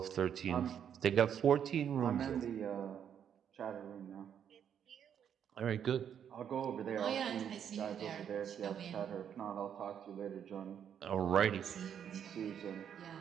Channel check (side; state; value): left; quieter; 8.7 dB